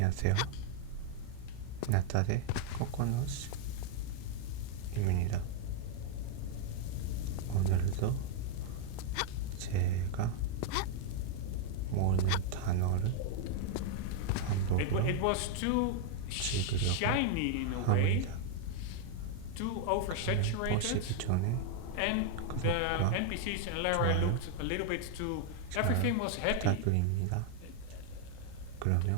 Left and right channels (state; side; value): different; both; correlation 0.00